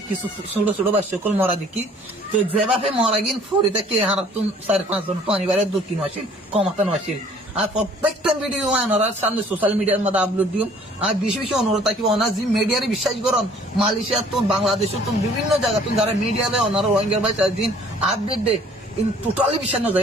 কিছু ছোট ছোট বা সকল মরা দেখি। তো যে বাপে মরা গিন ফরিতে কে হারাতুন 4-5 জন পানিবারের 2-3 আসিল কমাতানো আসিল। আর প্রত্যেকটা ভিডিও ওনারা সামনে সোশ্যাল মিডিয়ার মধ্যে আপলোড দিও। আর বেশি বেশি অনুরোধ থাকি ওনার যে মিডিয়ারে বিশ্বাস করুন, মালয়েশিয়া তো বাংলাদেশ তো বিভিন্ন জায়গা তুমি যারা মিডিয়া দেয় ওনারা রোহিঙ্গার ভাই দিন আপডেট দেয়, টোটালি বিশ্বাস না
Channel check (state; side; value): normal; both; correlation 0.55